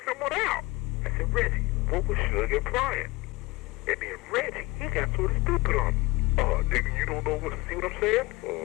someone out. I said, Reggie, what was Suge implying? And then Reggie, he got sort of stupid on me. Nigga, you don't know see what I'm saying?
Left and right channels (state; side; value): quieter; right; 21.6 dB